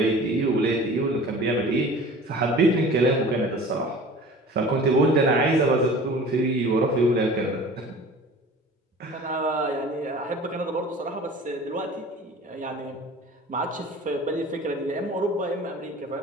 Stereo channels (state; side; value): normal; both; correlation 0.42